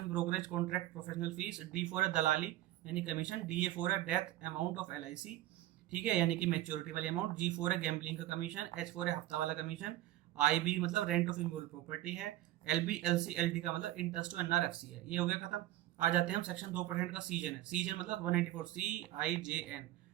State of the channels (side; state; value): left; quieter; 15.0 dB